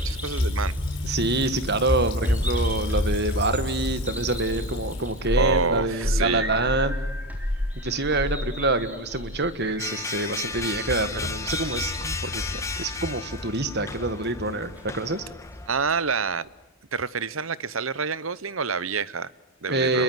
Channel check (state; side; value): normal; both; correlation 0.16